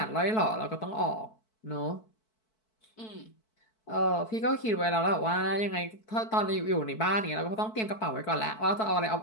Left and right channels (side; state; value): right; late; 4.6 ms